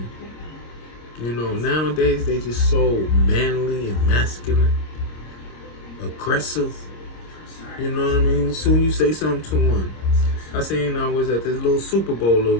Nowadays they just so manly and masculine, aggressive. You know what I mean? As soon as you say something to one. I seen I was at this little Super Bowl little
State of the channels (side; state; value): right; late; 26 ms